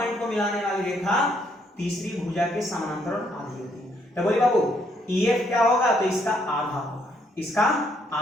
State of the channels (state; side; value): normal; both; correlation 0.71